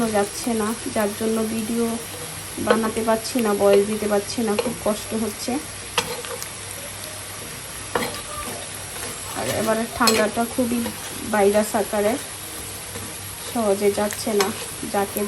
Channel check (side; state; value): both; identical; correlation 1.00